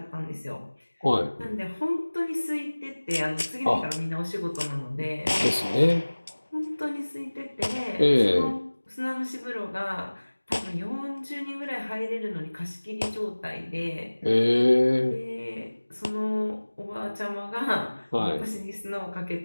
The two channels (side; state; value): both; inverted; correlation -1.00